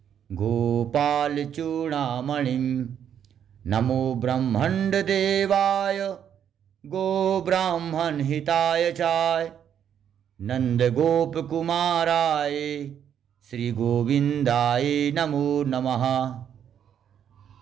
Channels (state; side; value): quieter; left; 9.0 dB